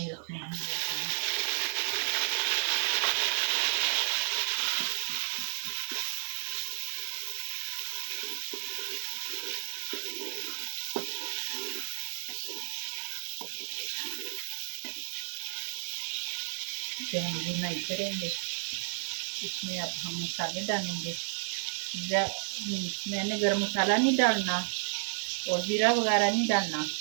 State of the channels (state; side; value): silent; left; digital silence